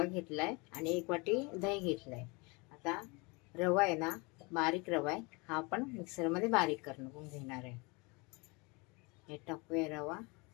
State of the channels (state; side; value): quieter; right; 27.9 dB